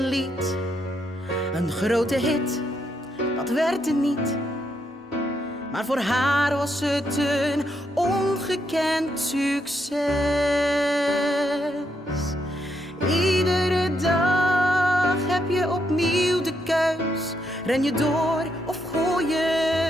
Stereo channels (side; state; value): both; normal; correlation 0.78